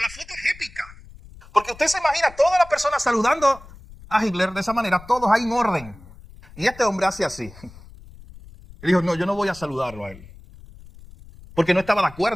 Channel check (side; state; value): left; noise; rumble, 20 dB below the sound